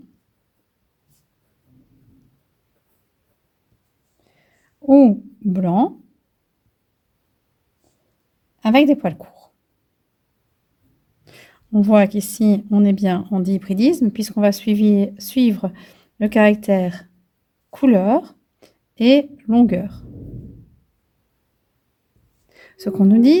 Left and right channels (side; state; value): both; identical; correlation 1.00